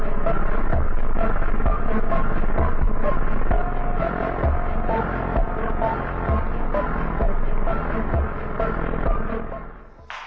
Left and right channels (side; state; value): both; identical; correlation 1.00